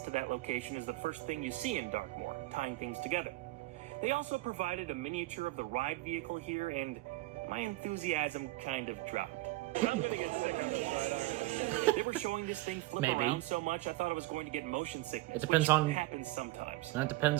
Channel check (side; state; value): left; quieter; 19.1 dB